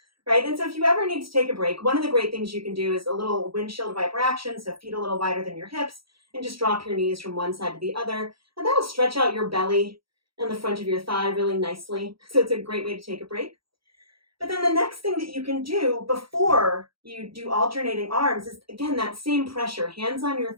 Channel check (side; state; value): left; late; 0.75 ms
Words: right? And so if you ever need to take a break, one of the great things you can do is a little windshield wiper action, so feet a little wider than your hips, and just drop your knees from one side to the other, and that'll stretch out your belly and the front of your thigh really nicely, so it's a great way to take a break. But then the next thing that you can do before you do alternating arms is, again, that same pressure, hands on your